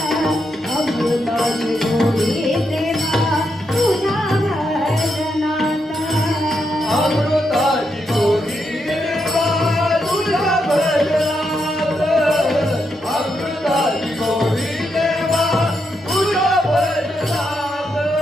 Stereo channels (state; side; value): normal; both; correlation 0.82